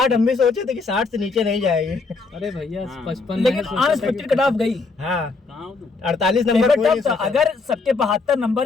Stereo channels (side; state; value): right; quieter; 4.1 dB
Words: हम भी सोचे थे कि 60 से नीचे नहीं जाएगी। अरे भैया 55, लेकिन अनएक्सपेक्टेड कट ऑफ गई। हाँ, 48 नंबर था। अगर सबके 72 नंबर